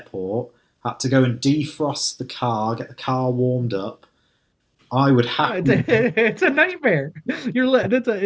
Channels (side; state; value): both; identical; correlation 1.00